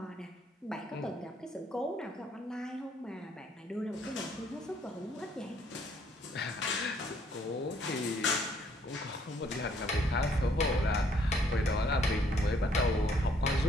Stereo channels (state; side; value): normal; both; correlation 0.66